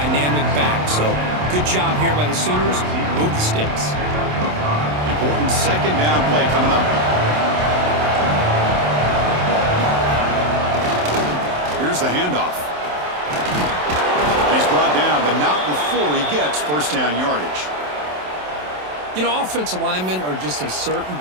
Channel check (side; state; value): left; late; 27 ms